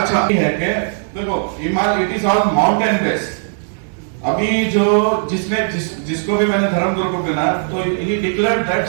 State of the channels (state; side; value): silent; left; digital silence